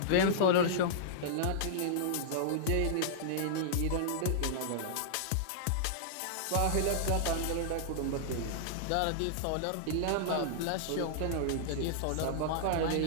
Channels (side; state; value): both; different; correlation -0.02